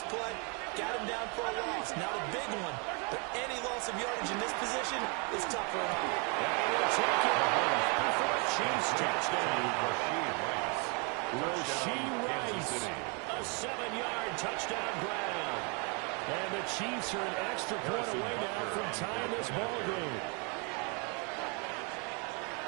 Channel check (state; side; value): quieter; left; 34.1 dB